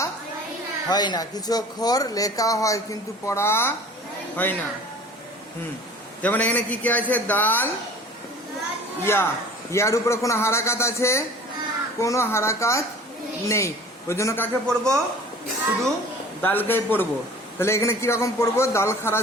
হয় না। কিছু অক্ষর লেখা হয় কিন্তু পড়া হয় না। যেমন এখানে কি কি আছে? দাল, ইয়া। ইয়ার উপরে কোনো হারাকাত আছে? কোনো হারাকাত নেই। ওই জন্য কাকে পড়বো? শুধু দালকেই পড়বো। তাহলে এখানে কিরকম পড়বো? দাল খারাজ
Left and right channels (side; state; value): both; normal; correlation 0.45